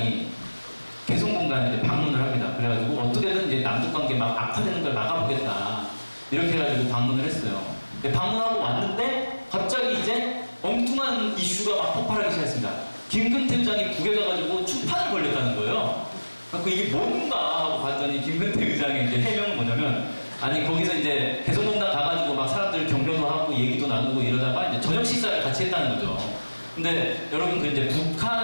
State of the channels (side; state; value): both; inverted; correlation -1.00